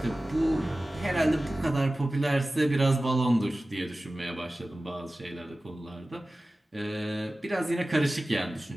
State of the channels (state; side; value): normal; both; correlation 0.96